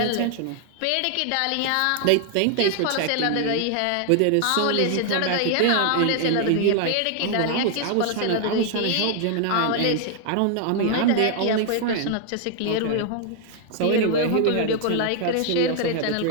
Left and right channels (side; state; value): both; different; correlation 0.00